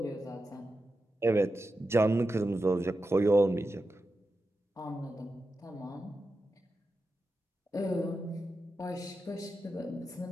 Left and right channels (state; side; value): normal; both; correlation 0.90